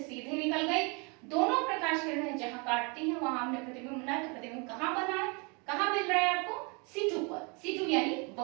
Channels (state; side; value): quieter; left; 32.2 dB